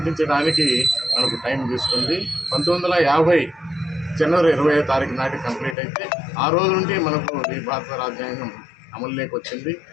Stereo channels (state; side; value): drops out; right; at 5.8 s